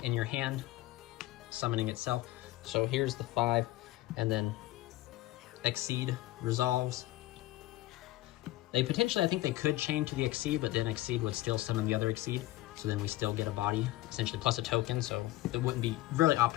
in your hand, summoning itself. So here's the 5, and then Exceed resolves. They potentially, I think they could chain to the Exceed, but then Exceed would still summon the other Exceed. So then we still get a body, essentially, plus a token, so it wouldn't be really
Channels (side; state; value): right; quieter; 16.9 dB